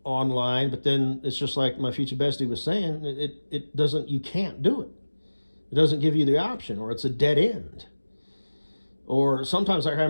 online, but then it's just like my future bestie was saying, it doesn't, you can't do it. It doesn't give you the option, or it's a dead end. Or sometimes, like I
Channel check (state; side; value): inverted; both; correlation -1.00